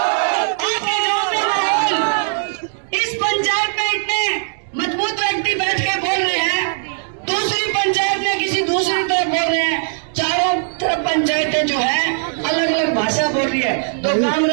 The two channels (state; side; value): silent; left; digital silence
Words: इस पंचायत में इतने मजबूत व्यक्ति बैठ के बोल रहे हैं, दूसरी पंचायत में किसी दूसरी तरफ बोल रहे हैं, चारों तरफ पंचायतें जो है अलग अलग भाषा बोल रही है। तो